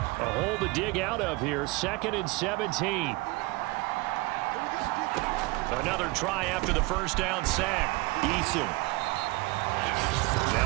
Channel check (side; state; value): left; quieter; 23.1 dB